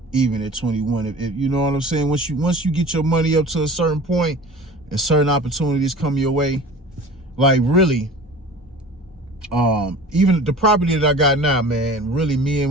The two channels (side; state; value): both; normal; correlation 0.40